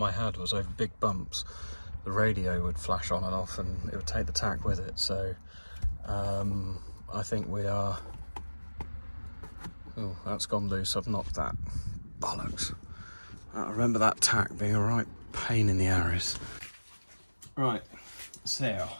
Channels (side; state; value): both; inverted; correlation -1.00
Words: I had was over big bumps. The radio would flash on and off and it would take the tack with it. So I think we are... Oh, that's gone loose. I've knocked that. Bollocks. I remember that tack being a right pain in the arse. Right, so